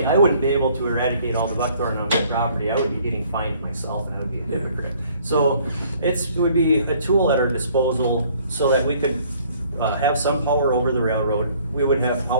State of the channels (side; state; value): both; inverted; correlation -0.58